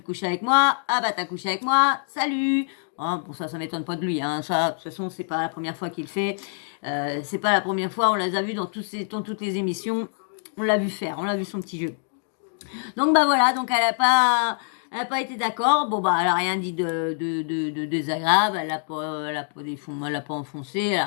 couches avec moi, ah bah t'as couché avec moi, salut. Hein, bon ça m'étonne pas de lui, hein. Ça, de toute façon, c'est pas la première fois qu'il le fait. C'est pas la première fois, on les a vus dans toutes les émissions. On l'a vu faire, on l'a vu son petit jeu. Donc bah voilà, donc Elle n'a pas été d'accord. Bon, bah, elle n'a rien dit de désagréable. Elle a pas enfoncé. Elle n'a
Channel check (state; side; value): silent; right; digital silence